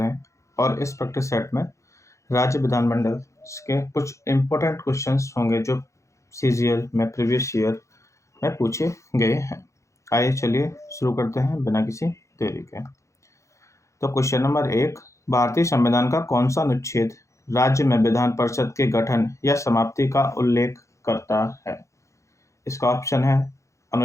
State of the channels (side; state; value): right; late; 0.15 ms